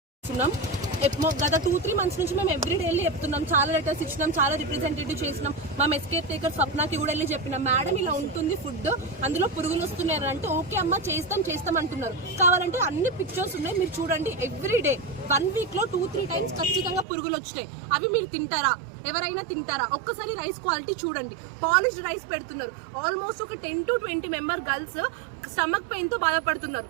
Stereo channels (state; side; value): drops out; left; at 17.1 s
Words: చేస్తున్నాం. గత 2-3 months నుంచి మేము ఎవ్రీడే వెళ్ళి చెప్తున్నాం, చాలా లెటర్స్ ఇచ్చినాం, చాలా రిప్రజెంటేటివ్ చేసినాం. మా ఎస్కేప్ టేకర్ స్వప్నకి కూడా వెళ్ళి చెప్పినాం, మేడం ఇలా ఉంటుంది ఫుడ్, అందులో పురుగులు వస్తున్నాయి అంటే ఓకే అమ్మ చేస్తాం అంటున్నారు. కావాలంటే అన్ని పిక్చర్స్ ఉన్నాయి, మీరు చూడండి. ఎవ్రీడే 1 week లో 2-3 times ఖచ్చితంగా పురుగులు వచ్చినాయి. అవి మీరు తింటారా? ఎవరైనా తింటారా? ఒక్కసారి రైస్ క్వాలిటీ చూడండి. పాలిష్డ్ రైస్ పెడుతున్నారు. ఆల్మోస్ట్ ఒక 10 to 20 member girls stomach pain తో బాధపడుతున్నారు.